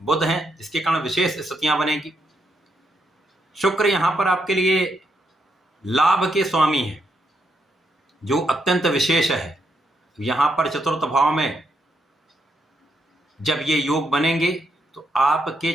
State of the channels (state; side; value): normal; both; correlation 0.78